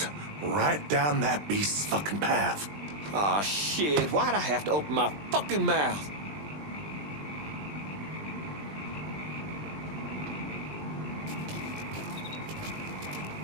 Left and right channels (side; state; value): left; late; 20 ms